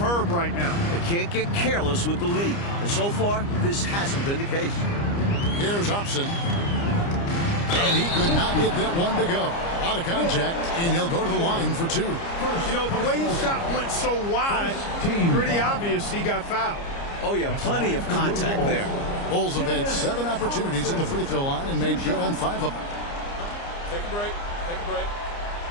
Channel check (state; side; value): late; right; 29 ms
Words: right now. They can't get careless with the lead. And so far, this hasn't been the case. Here's Hobson. And he could not get that one to go. Out of contact, and he'll go to the line for 2. You know, the way his shot went so wide, pretty obvious he got fouled. Oh, yeah, plenty of contact there. Bulls have had 7 opportunities at the free throw line and made good on 5 of them. Take a break. Take a break.